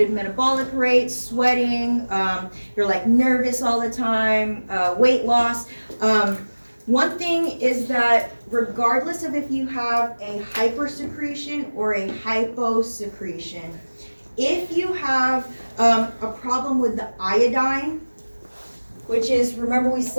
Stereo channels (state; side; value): inverted; both; correlation -1.00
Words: metabolic rate, sweating, you're like nervous all the time, weight loss. One thing is that regardless of if you have a hypersecretion or a hyposecretion, if you have a problem with the iodine, which is, remember we